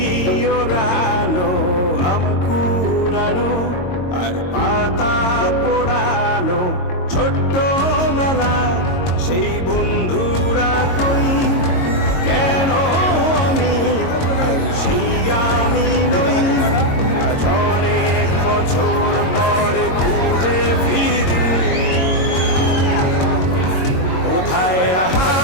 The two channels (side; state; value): right; late; 22 ms